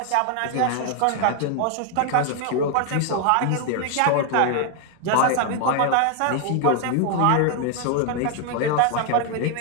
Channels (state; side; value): different; both; correlation 0.00